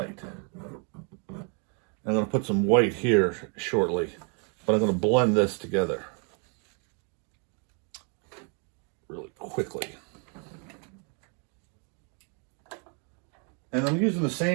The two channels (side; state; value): left; quieter; 37.8 dB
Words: I'm going to put some white here shortly, but I'm going to blend this together really quickly. And I'm using the